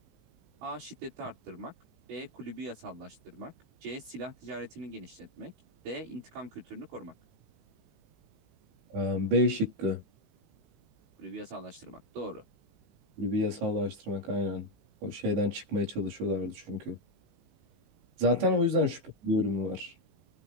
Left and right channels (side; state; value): left; late; 19 ms